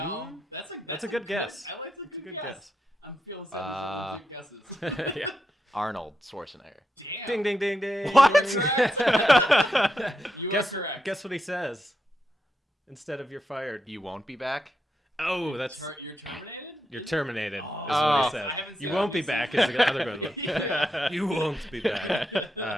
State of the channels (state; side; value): normal; both; correlation 0.84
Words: that's a good guess. I like the That's a good good guess. guess. I'm feeling some good guesses. Yeah. Arnold Schwarzenegger. Damn. Ding ding ding ding. What? You Guess are correct. guess what he says. Instead of "you're fired." You won't be back. Oh, that's You're terminated. you're terminated. Oh. Is what he Oh. says. I haven't You seen won't it. be back. Is the other good one. Yeah. You won't be back.